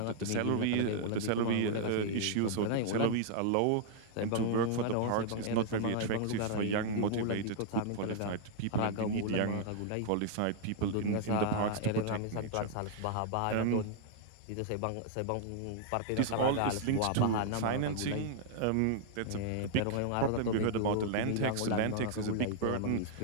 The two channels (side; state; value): both; different; correlation -0.01